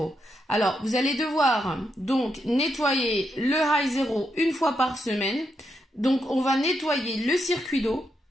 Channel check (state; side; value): normal; both; correlation 0.82